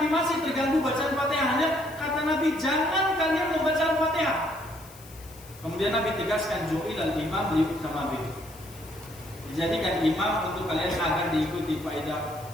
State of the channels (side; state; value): left; noise; hiss, 21 dB below the sound